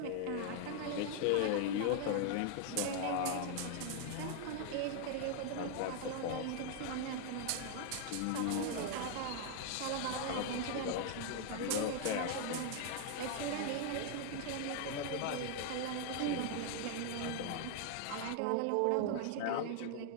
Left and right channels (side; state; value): both; different; correlation 0.00